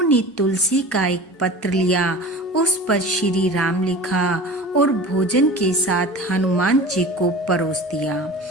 तुलसी का एक पत्र लिया, उस पर श्री राम लिखा और भोजन के साथ हनुमान जी को परोस दिया।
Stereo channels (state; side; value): normal; both; correlation 0.36